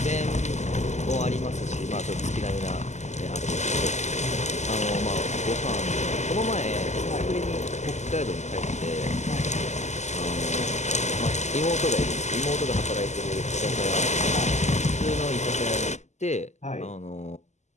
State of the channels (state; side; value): late; right; 0.33 ms